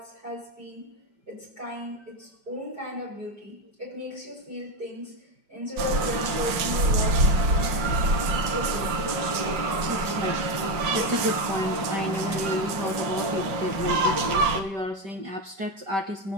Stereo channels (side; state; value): left; late; 5.6 ms